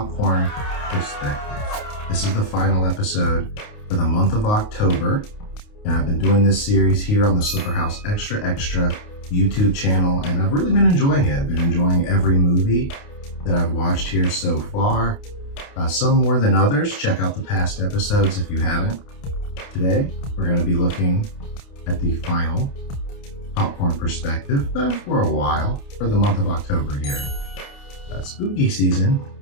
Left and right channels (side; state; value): right; late; 29 ms